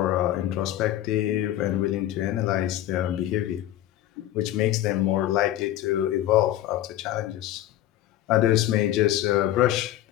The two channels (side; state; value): right; quieter; 13.3 dB